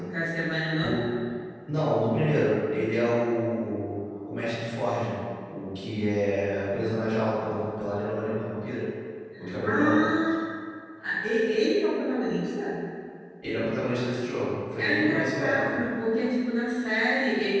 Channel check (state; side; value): identical; both; correlation 1.00